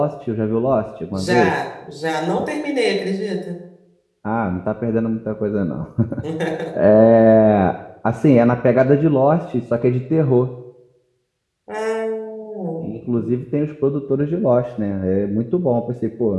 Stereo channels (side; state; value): both; identical; correlation 1.00